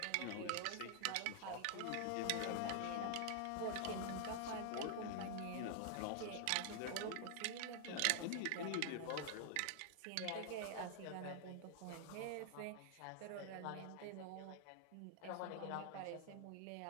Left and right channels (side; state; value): both; different; correlation 0.00